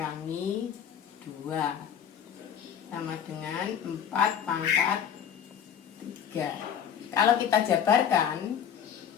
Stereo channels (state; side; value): quieter; right; 8.5 dB